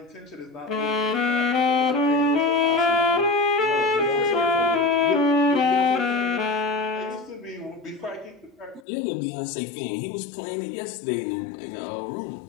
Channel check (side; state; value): right; drops out; at 8.8 s